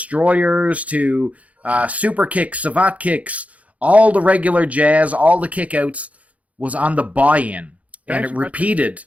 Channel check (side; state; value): left; late; 0.068 ms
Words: to super kicks, savate kicks, all the regular jazz, all the kickouts was on the buy-in, and it repeated